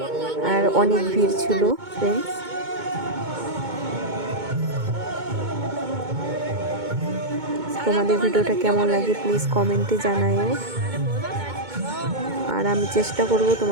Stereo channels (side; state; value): left; late; 2.2 ms